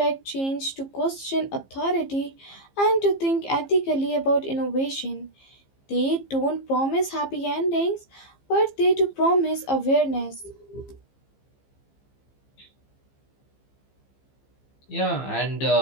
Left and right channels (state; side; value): late; right; 15 ms